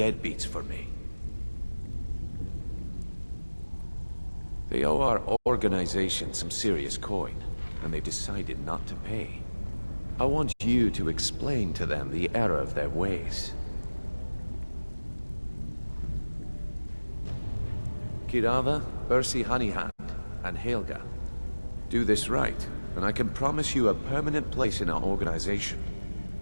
for me? They owe our organization some serious coin, and they decided not to pay. I want you to explain to them the error of their ways. Kirava, Ursi Honeyhand, and Helga. Do this right, and I can promise you a permanent place in our organization.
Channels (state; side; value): inverted; both; correlation -1.00